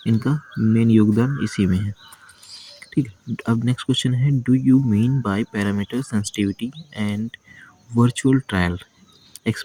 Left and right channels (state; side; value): identical; both; correlation 1.00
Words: इनका मेन योगदान इसी में है। ठीक है, अब नेक्स्ट क्वेश्चन है, do you mean by parameter sensitivity and virtual trial?